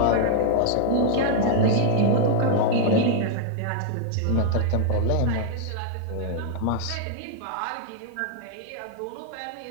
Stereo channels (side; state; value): both; different; correlation -0.01